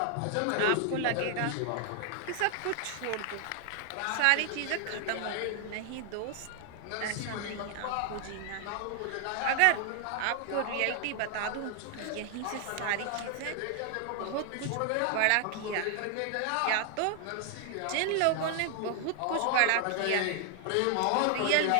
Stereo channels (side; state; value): both; different; correlation 0.00